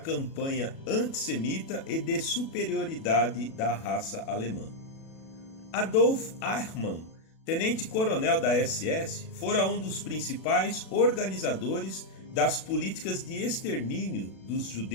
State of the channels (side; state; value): right; late; 37 ms